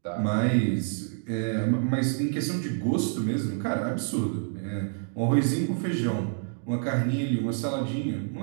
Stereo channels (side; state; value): left; silent; digital silence